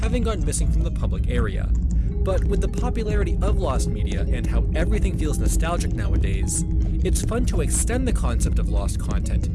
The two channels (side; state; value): both; identical; correlation 1.00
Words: gone missing from the public area. But with the popularity of lost media and how everything feels nostalgic nowadays, it's fun to extend the concept of lost